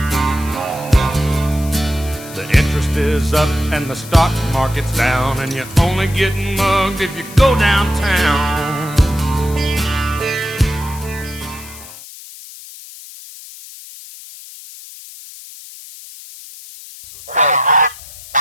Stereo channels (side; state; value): left; noise; hiss, 16 dB below the sound